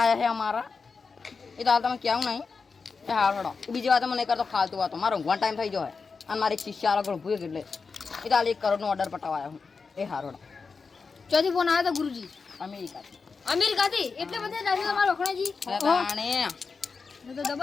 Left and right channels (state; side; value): quieter; right; 4.9 dB